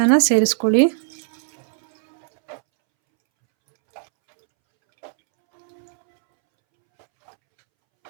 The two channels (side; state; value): left; silent; 66 dB below the other